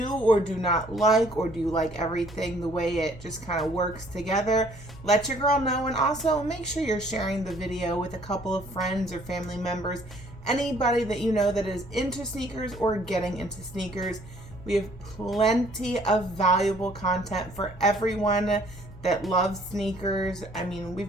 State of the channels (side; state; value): both; normal; correlation 0.60